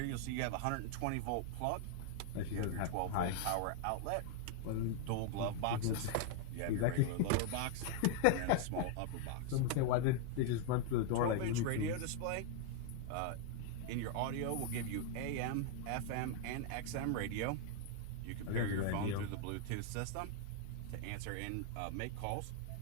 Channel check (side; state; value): both; different; correlation 0.00